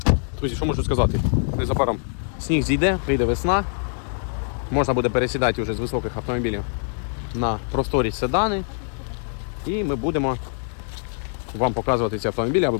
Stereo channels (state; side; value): silent; right; 57 dB below the other